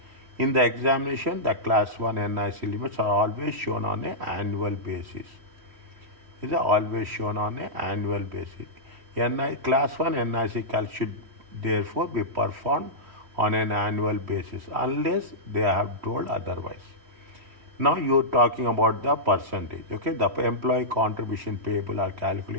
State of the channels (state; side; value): late; left; 3.1 ms